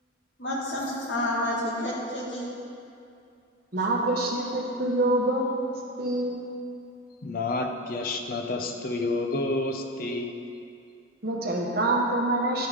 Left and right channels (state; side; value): normal; both; correlation 0.17